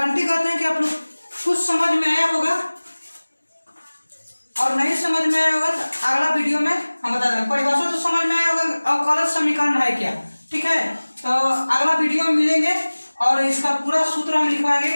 करते हैं कि आप लोग कुछ समझ में आया होगा, और नहीं समझ में आया होगा तो अगला वीडियो में हम बता देंगे। परिभाषा तो समझ में आया होगा, अवकलज समीकरण है क्या, ठीक है। तो अगला वीडियो में मिलेंगे और इसका पूरा सूत्र हम लिखवाएंगे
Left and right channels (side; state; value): both; inverted; correlation -1.00